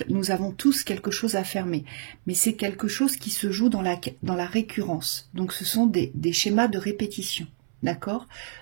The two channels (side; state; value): left; silent; 60 dB below the other